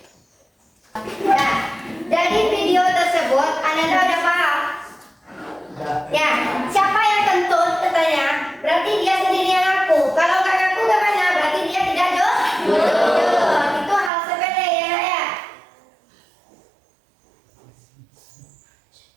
Nah, dari video tersebut Anda udah paham? Ya, siapa yang kentut katanya? Berarti dia sendiri yang ngaku. Kalau nggak ngaku gimana? Berarti dia tidak jujur. Itu hal sepele ya, Nak, ya.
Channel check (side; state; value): left; drops out; at 14.1 s